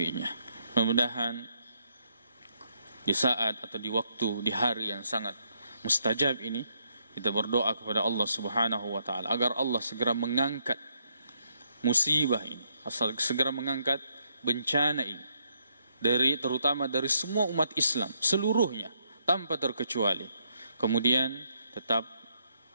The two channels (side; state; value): both; inverted; correlation -0.75